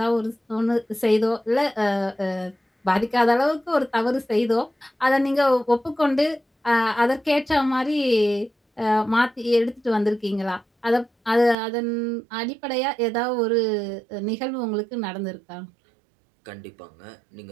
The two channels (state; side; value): drops out; left; at 11.6 s